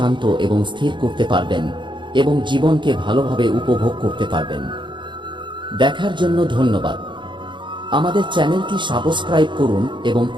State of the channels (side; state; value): left; late; 0.23 ms